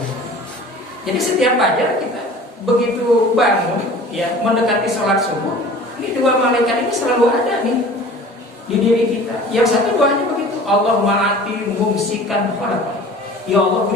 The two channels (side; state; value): both; normal; correlation 0.43